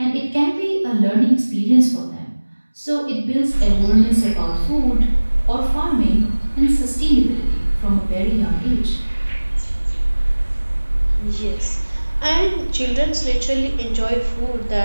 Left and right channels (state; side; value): inverted; both; correlation -1.00